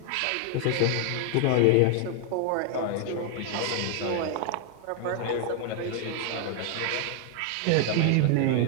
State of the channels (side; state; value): both; different; correlation 0.00